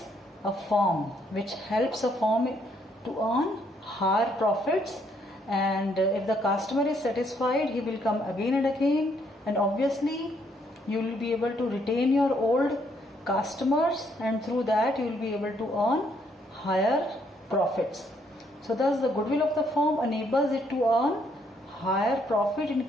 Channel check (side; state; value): both; normal; correlation 0.70